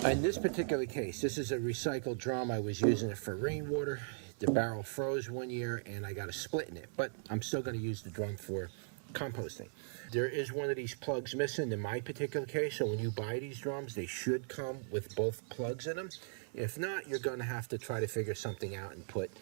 In this particular case, this is a recycled drum. I was using it for rainwater. The barrel froze one year and I got a split in it, but I'm still going to use the drum for composting. There is one of these plugs missing in my particular case, so when you buy these drums, they should come with both plugs in them. If not, you're going to have to try to figure something out and put,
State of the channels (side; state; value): left; silent; digital silence